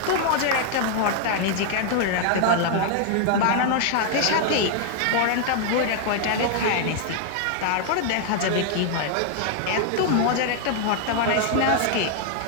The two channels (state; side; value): different; both; correlation 0.00